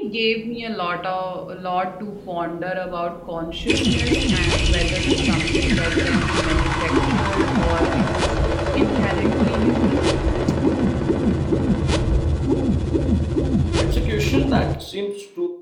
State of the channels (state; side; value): identical; both; correlation 1.00